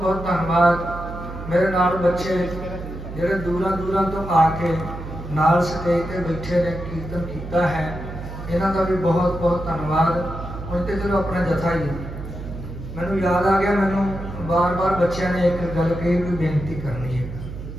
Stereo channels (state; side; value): noise; right; hum, 10 dB below the sound